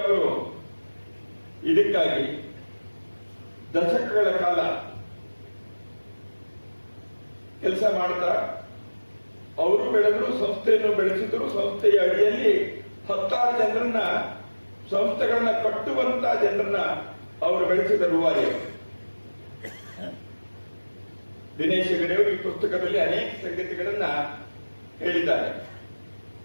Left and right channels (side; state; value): both; inverted; correlation -1.00